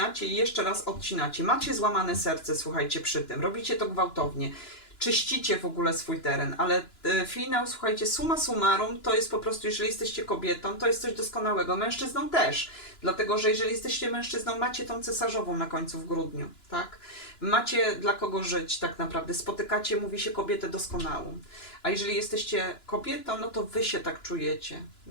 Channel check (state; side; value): late; right; 2.9 ms